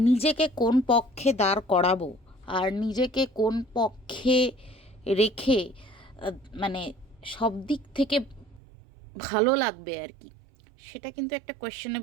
নিজেকে কোন পক্ষে দাঁড় করাবো আর নিজেকে কোন পক্ষে রেখে আ মানে সব দিক থেকে ভালো লাগবে আর কি, সেটা কিন্তু একটা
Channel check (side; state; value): left; drops out; at 8.6 s